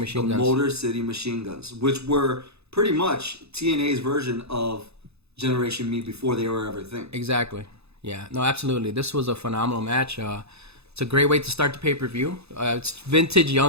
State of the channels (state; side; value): late; left; 0.79 ms